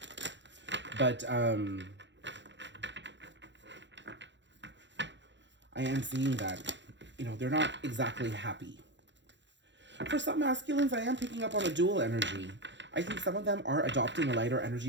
But I am seeing that, they're not exactly happy. For some masculines, I am picking up on a dual energy. I think some of them are adopting a lighter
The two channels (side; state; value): left; late; 0.53 ms